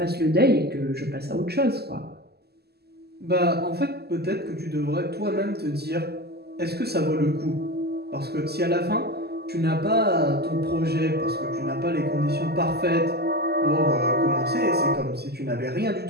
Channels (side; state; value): left; late; 0.46 ms